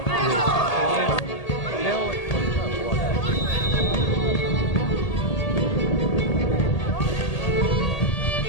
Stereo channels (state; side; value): late; right; 1.8 ms